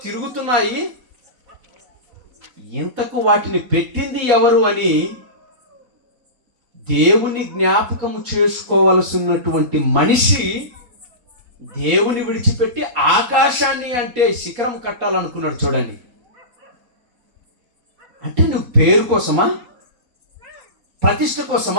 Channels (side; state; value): left; late; 4.2 ms